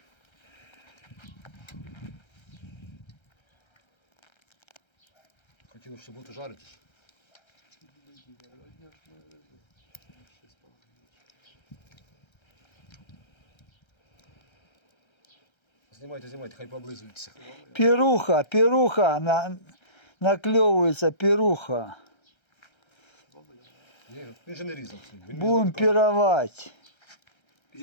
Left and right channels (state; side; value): late; right; 1.3 ms